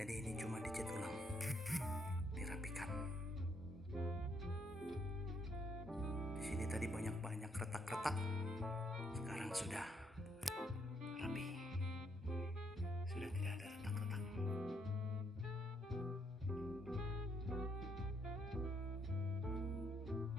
ini cuma dicat ulang, dirapikan. Di sini tadi banyak retak-retak. Sekarang sekarang sudah rapi, sudah tidak ada retak-retak.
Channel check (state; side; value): normal; both; correlation 0.73